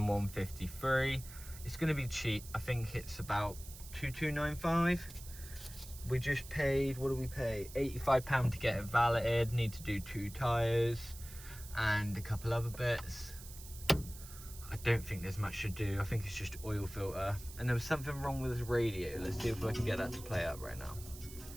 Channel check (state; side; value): noise; right; hiss, 15 dB below the sound